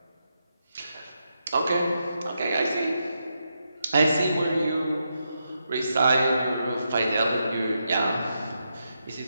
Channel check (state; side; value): inverted; both; correlation -0.84